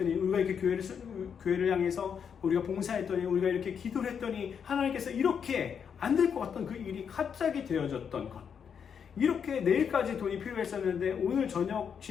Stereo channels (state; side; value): quieter; right; 7.2 dB